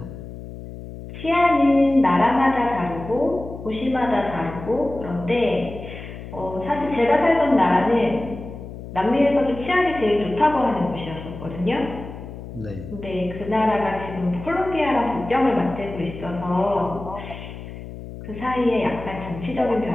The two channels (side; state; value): left; noise; hum, 12 dB below the sound